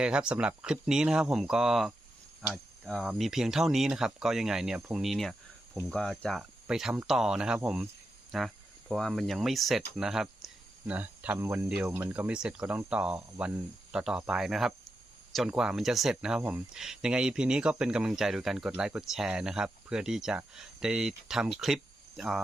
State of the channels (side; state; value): both; normal; correlation 0.87